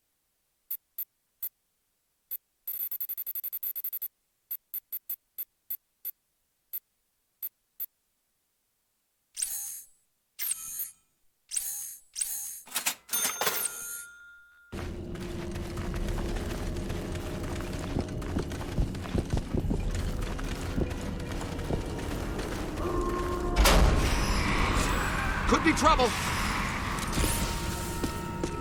Could be trouble.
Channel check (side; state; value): both; identical; correlation 1.00